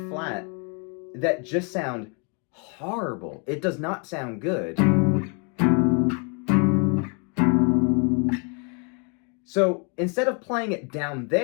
flat that just sound horrible. It does not sound good. So instead of playing it down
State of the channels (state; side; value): quieter; right; 36.1 dB